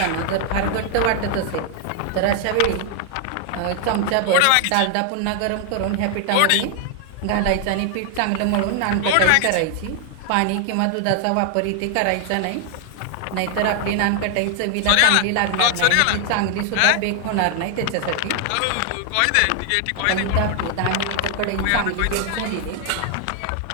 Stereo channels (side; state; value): both; different; correlation 0.00